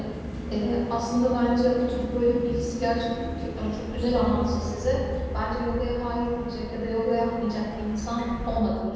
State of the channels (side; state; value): both; identical; correlation 1.00